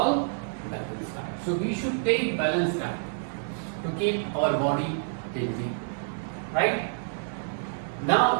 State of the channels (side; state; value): left; silent; digital silence